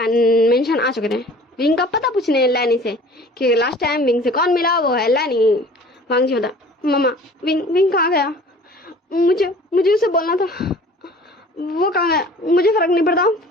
मेंशन आ चुके थे विंग का पता पूछने लैनी से कि लास्ट टाइम विंग से कौन मिला, वो है लैनी। वांग जी बता मम्मा विंग कहाँ गया? मुझे उसे बोलना था। वो कहाँ गया? मुझे फर्क नहीं पड़ता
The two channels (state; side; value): normal; both; correlation 0.47